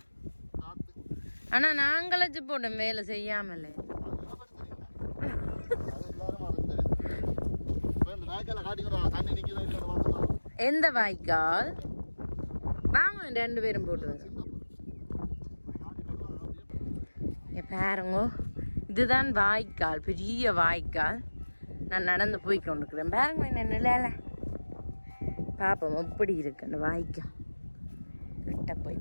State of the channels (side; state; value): both; inverted; correlation -1.00